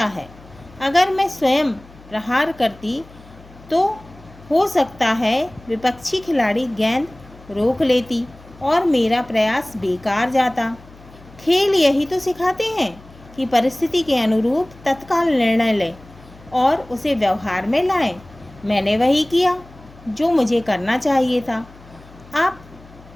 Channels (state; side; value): noise; left; hum, 23 dB below the sound